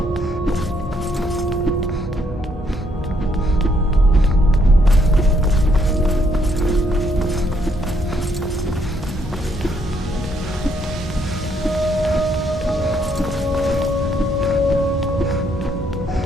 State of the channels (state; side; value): normal; both; correlation 0.71